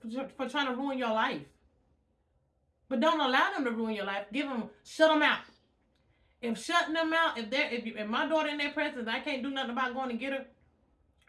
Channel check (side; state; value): both; identical; correlation 1.00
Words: ruin your life. But don't allow them to ruin your life. Shut them out. If shutting them out, if my daughter in their presence, I can't do nothing about going to get her